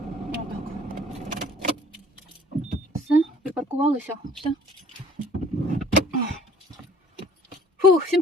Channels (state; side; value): normal; both; correlation 0.53